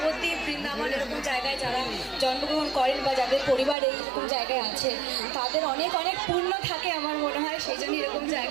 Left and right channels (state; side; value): drops out; left; at 3.8 s